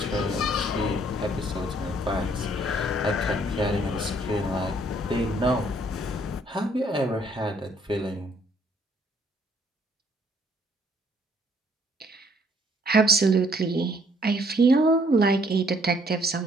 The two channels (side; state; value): both; normal; correlation 0.64